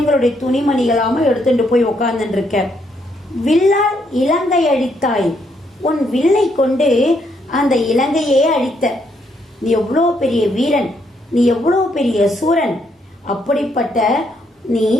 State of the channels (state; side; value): normal; both; correlation 0.74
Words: துணிமணிகளாம எடுத்துட்டு போய் உக்காந்துட்டு இருக்க. வில்லால் இலங்கை அழித்தாய், உன் வில்லை கொண்டு அந்த இலங்கையே அழித்த, நீ எவ்வளோ பெரிய வீரன், நீ எவ்வளோ பெரிய சூரன், அப்படிப்பட்ட நீ